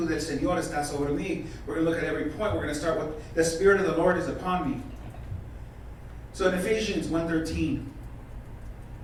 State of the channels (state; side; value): identical; both; correlation 1.00